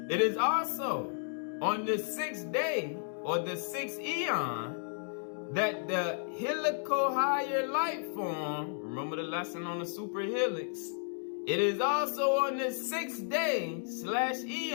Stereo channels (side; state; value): right; silent; digital silence